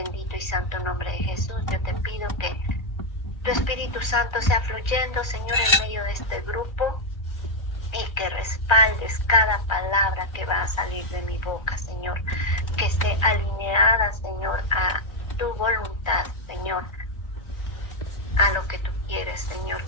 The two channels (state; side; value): late; right; 1.3 ms